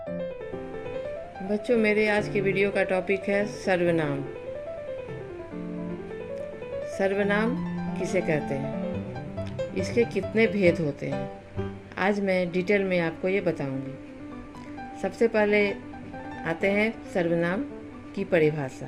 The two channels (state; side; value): identical; both; correlation 1.00